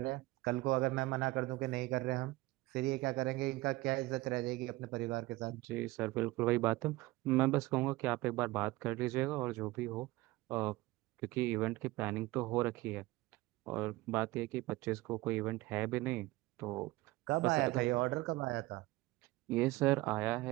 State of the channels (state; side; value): quieter; left; 19.8 dB